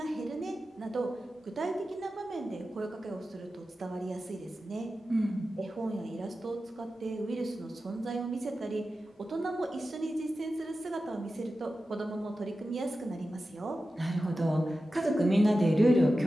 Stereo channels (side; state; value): both; normal; correlation 0.93